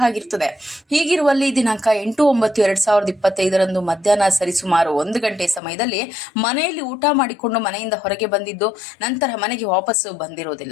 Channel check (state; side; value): drops out; right; at 5.6 s